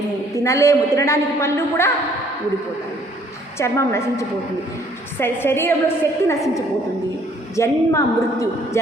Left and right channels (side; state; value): both; normal; correlation 0.62